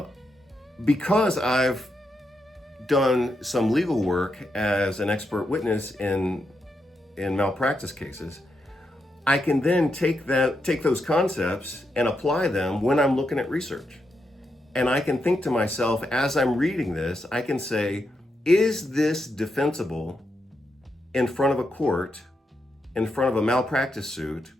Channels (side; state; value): both; normal; correlation 0.83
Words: because I've done some legal work as an expert witness in malpractice cases, I can then take those concepts and apply them when I'm looking at research. And I can think to myself, as I'm reading this, I can say, is this defensible in front of a court, in front of a malpractice suit,